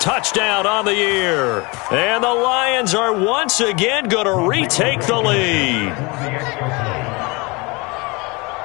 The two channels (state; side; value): quieter; right; 26.8 dB